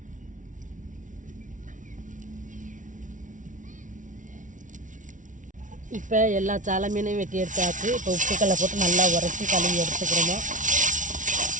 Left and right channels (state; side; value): late; left; 0.37 ms